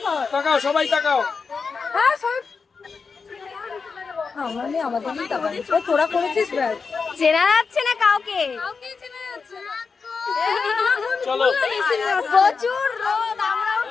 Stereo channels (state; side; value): quieter; right; 5.0 dB